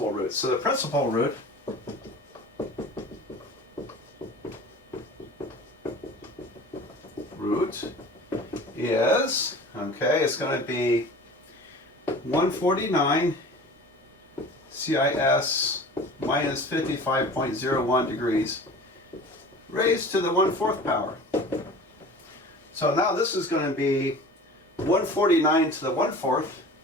root. So the principal root is, okay, it's going to be 149 CIS minus 55.01 degrees raised to the 1/4 power. So now this is going to be 149 to the 1/4.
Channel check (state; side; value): normal; both; correlation 0.40